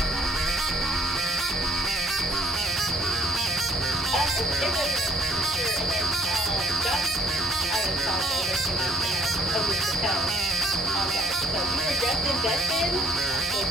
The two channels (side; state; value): both; normal; correlation 0.60